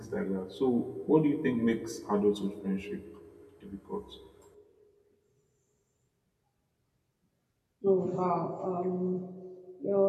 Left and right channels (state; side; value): identical; both; correlation 1.00